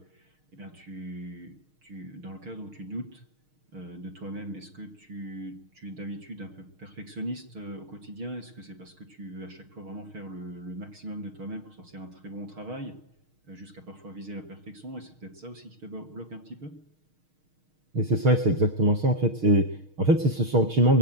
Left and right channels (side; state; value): left; late; 6.4 ms